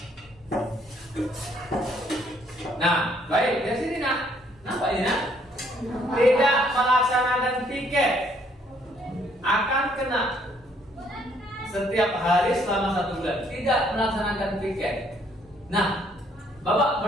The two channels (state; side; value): normal; both; correlation 0.66